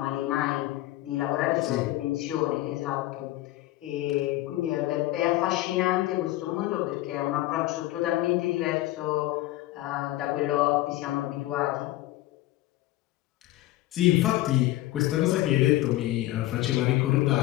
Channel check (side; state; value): right; quieter; 16.6 dB